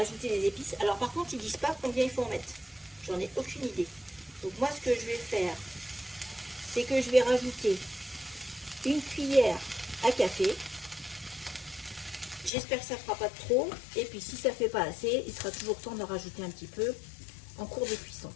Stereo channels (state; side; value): drops out; right; at 12.5 s